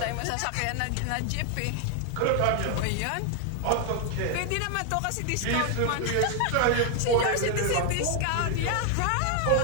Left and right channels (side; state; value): both; different; correlation 0.00